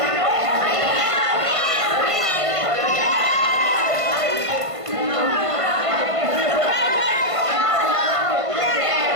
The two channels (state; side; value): late; left; 1.5 ms